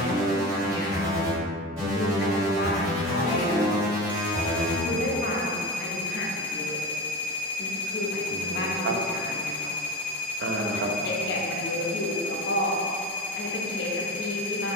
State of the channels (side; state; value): both; normal; correlation 0.25